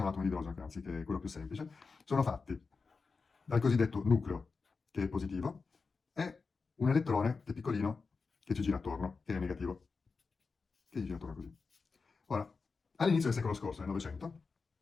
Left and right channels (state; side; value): quieter; right; 4.6 dB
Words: l'atomo di idrogeno, che anzi che è quello più semplice, sono fatti dal cosiddetto nucleo, che è positivo, e un elettrone, che è piccolino, che ci gira attorno, che è negativo, che ci gira attorno così. Ora, all'inizio del secolo scorso, nel Novecento,